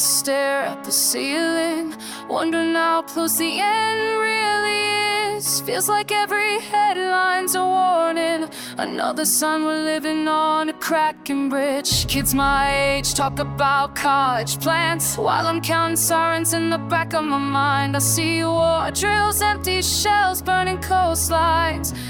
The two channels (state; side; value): identical; both; correlation 1.00